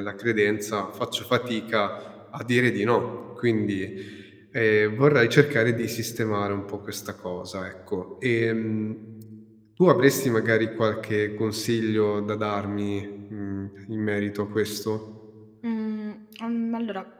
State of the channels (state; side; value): identical; both; correlation 1.00